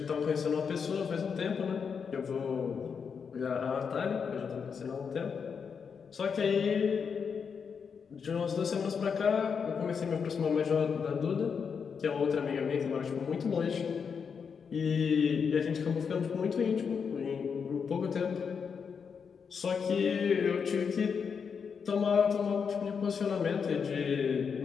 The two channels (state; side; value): quieter; right; 6.3 dB